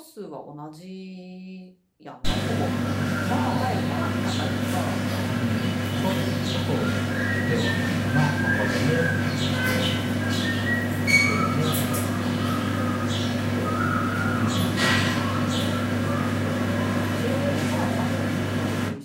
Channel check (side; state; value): both; identical; correlation 1.00